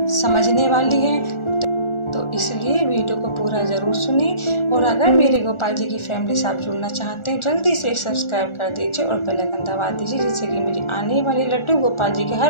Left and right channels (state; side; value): late; right; 1.4 ms